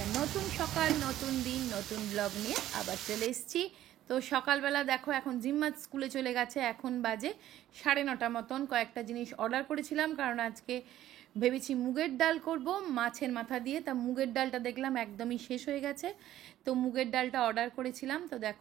নতুন সকাল, নতুন দিন, নতুন ব্লগ নিয়ে আবার চলে এসেছি। তো সকালবেলা দেখো এখন জিম্মাত স্কুলে চলে গেছে, এখন বাজে 9:30 মতন। কয়েকটা জিনিস অর্ডার করেছিলাম কারণ আজকে ভেবেছি মুগের ডাল করব মাছের মাথা দিয়ে। তা মুগের ডালটা দেখলাম একদমই শেষ হয়ে গেছে, তো মুগের ডালটা অর্ডার করেছিলাম। তো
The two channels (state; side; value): quieter; left; 13.2 dB